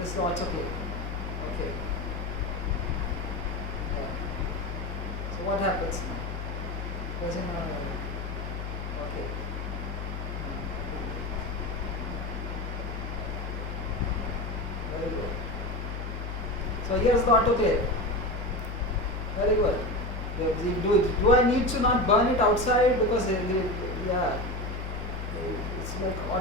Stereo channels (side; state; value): left; noise; hum, 5 dB below the sound